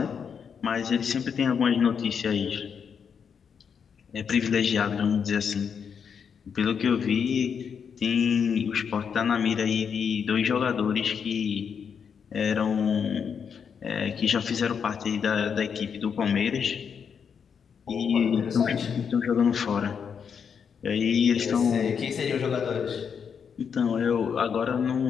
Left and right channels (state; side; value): quieter; right; 6.9 dB